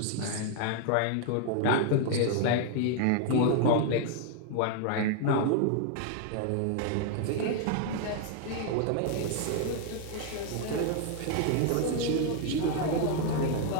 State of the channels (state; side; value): different; both; correlation 0.00